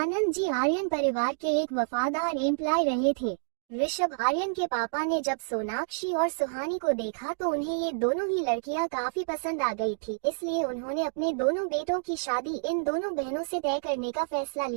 जी आर्यन परिवार के एक वफादार एम्प्लॉय रहे थे। ऋषभ आर्यन के पापा ने जब सोनाक्षी और सुहानी को देखा तो उन्हें ये दोनों ही लड़कियां काफी पसंद आ गई थी, इसलिए उन्होंने अपने दोनों बेटों की शादी इन दोनों बहनों से तय करने का फैसला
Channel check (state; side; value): silent; left; digital silence